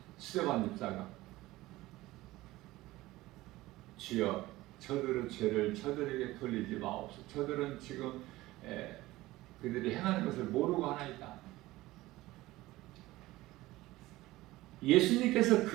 스데반 집사가 주여 저들의 죄를 저들에게 돌리지 마옵소서. 저들은 지금 그들이 행하는 것을 모르고 하나이다. 예수님께서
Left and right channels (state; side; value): quieter; left; 18.0 dB